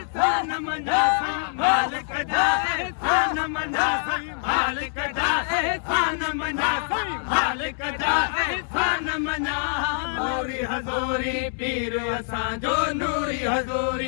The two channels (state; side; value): silent; right; digital silence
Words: मना मालिक जा एहसान मना मालिक जा एहसान मना मालिक जा एहसान मना नूरी हज़ूरी पीर असांजो नूरी